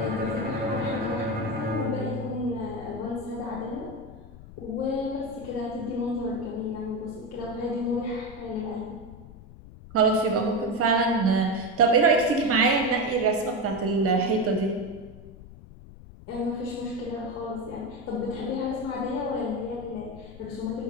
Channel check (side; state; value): left; noise; rumble, 17 dB below the sound